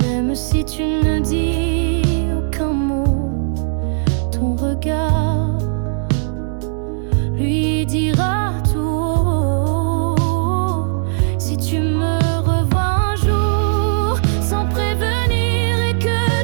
si tu ne dis aucun mot, ton regard lui dira tout haut. Si tu me revois un jour sans prévenir et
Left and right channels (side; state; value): left; silent; 67 dB below the other